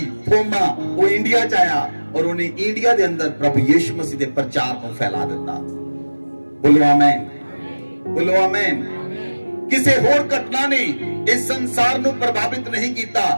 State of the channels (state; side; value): inverted; both; correlation -1.00